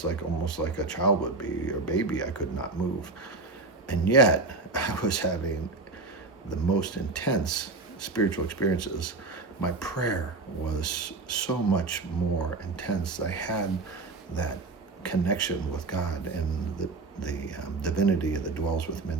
almost like a child would be, or baby. I could not move. And yet I was having the most intense spiritual experiences. My prayer was so much more intense. I had that connection with God and the divinity that dwells within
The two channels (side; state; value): left; quieter; 3.6 dB